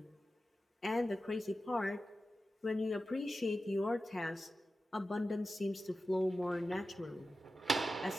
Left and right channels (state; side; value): normal; both; correlation 0.93